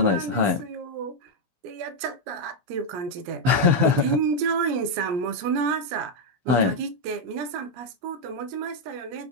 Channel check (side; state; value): left; late; 17 ms